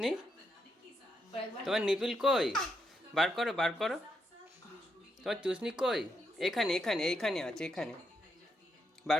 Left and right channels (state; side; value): normal; both; correlation 0.80